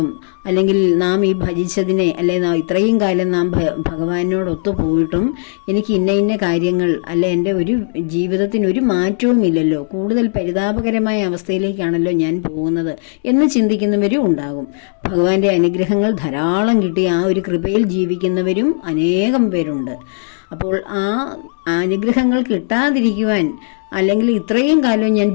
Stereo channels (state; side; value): silent; right; 69 dB below the other